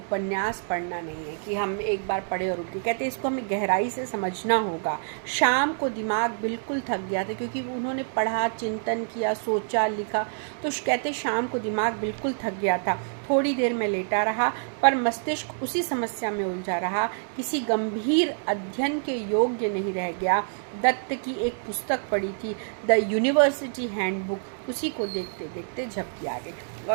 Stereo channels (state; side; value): silent; left; digital silence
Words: पढ़ना नहीं है कि हम एक बार पढ़े और उठ गए। कहते इसको हमें गहराई से समझना होगा। शाम को दिमाग बिल्कुल थक गया था, क्योंकि उन्होंने पढ़ा, चिंतन किया, सोचा, लिखा, तो कहते शाम को दिमाग बिल्कुल थक गया था। थोड़ी देर में लेटा रहा, पर मस्तिष्क उसी समस्या में उलझा रहा, किसी गंभीर अध्ययन के योग्य नहीं रह गया। दत्त की एक पुस्तक पढ़ी थी, द यूनिवर्सिटी हैंडबुक, उसी को देखते देखते झपकी आ गई।